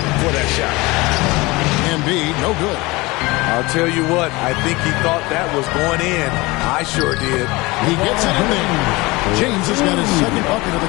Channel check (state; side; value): quieter; right; 22.7 dB